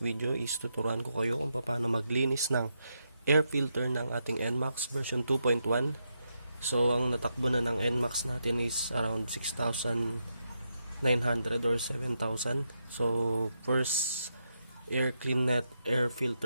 is tuturuan ko kayo kung paano maglinis ng air filter ng ating Nmax version 2.1. So ang natakbo na ng Nmax natin is around 6,900 or 7,000. So first air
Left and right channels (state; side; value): inverted; both; correlation -0.83